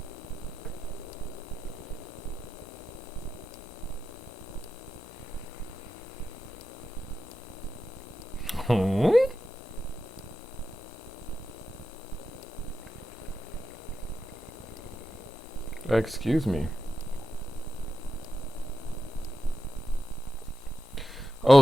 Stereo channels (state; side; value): normal; both; correlation 0.90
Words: Huh? Excuse me.